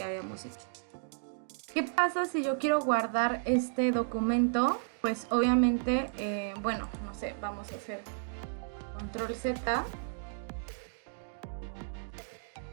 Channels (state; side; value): silent; left; digital silence